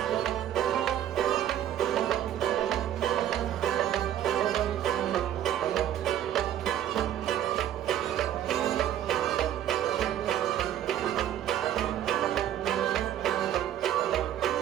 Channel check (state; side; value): quieter; left; 11.1 dB